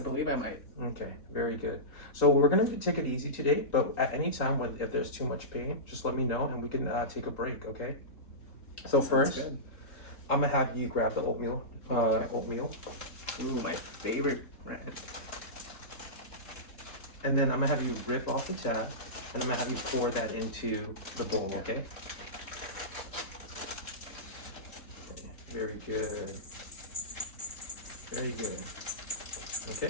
believe I might. Okay, very good. So we're gonna take it easy today, but at any time if there's too much pain, just let me know and we can take a break, okay? So Sounds first, good. I'm gonna have you grab the oatmeal. Okay. Oatmeal, Ooh, my favorite brand. and then I'm gonna have you rip off the tab, and I'm gonna have you pour that into the bowl, okay? Very good. Very good.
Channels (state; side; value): late; right; 3.7 ms